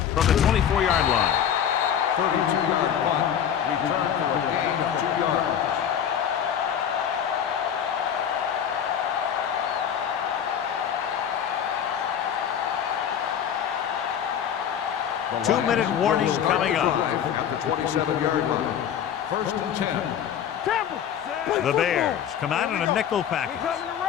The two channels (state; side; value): quieter; right; 8.9 dB